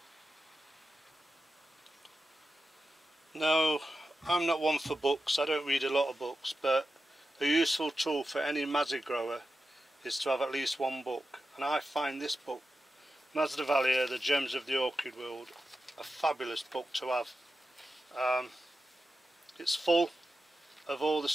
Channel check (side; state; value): both; normal; correlation 0.91